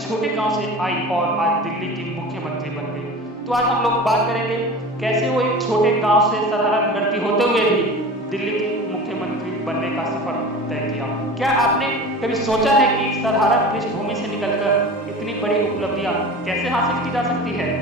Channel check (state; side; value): normal; both; correlation 0.35